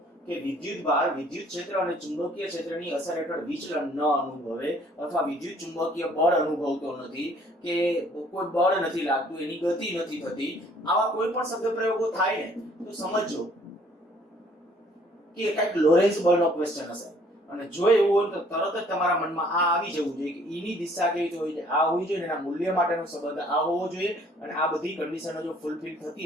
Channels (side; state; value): both; normal; correlation 0.59